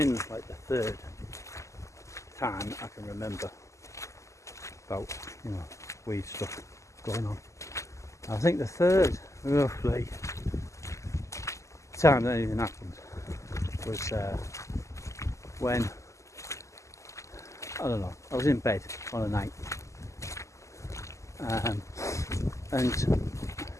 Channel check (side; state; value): right; late; 0.15 ms